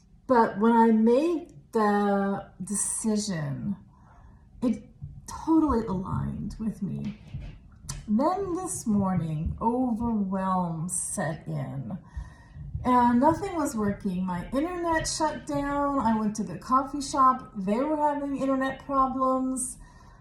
But when I made the decision, it totally aligned with me. Then this morning, overwhelm set in and nothing was working. My internet shut down. I went to the coffee shop. They were having internet problems.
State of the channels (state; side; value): identical; both; correlation 1.00